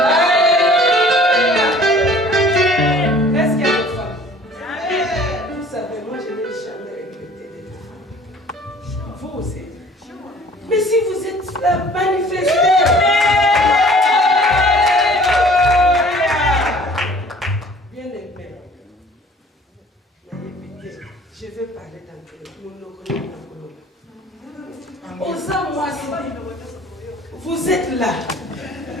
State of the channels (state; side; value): normal; both; correlation 0.51